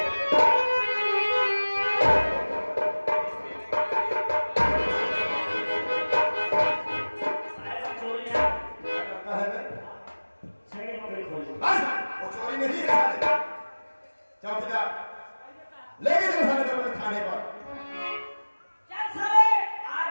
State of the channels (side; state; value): both; inverted; correlation -1.00